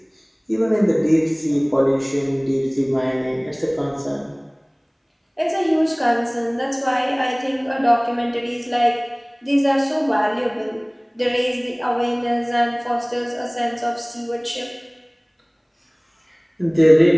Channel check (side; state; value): both; identical; correlation 1.00